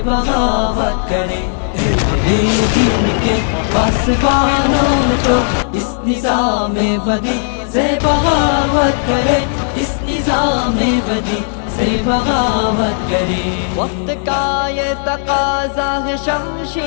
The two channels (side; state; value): right; silent; digital silence